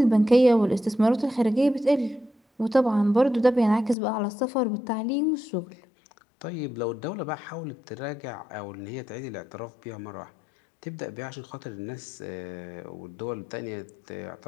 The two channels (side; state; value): right; drops out; at 4.0 s